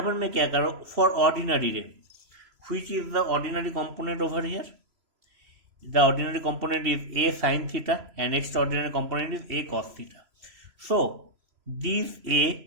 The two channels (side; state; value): left; late; 3.0 ms